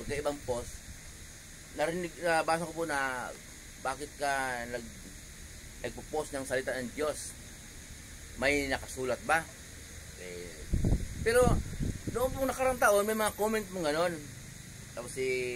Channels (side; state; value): both; identical; correlation 1.00